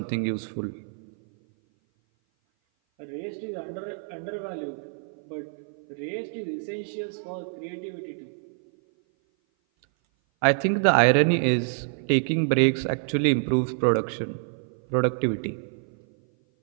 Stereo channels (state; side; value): silent; left; 56 dB below the other